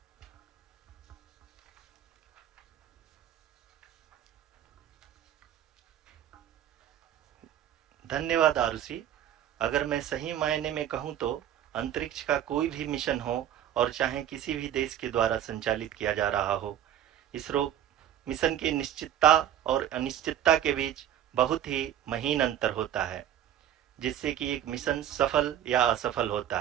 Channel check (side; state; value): left; quieter; 10.9 dB